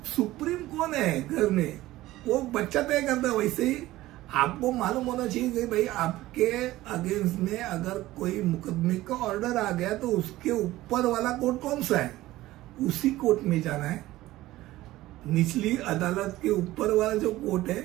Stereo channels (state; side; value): quieter; left; 16.6 dB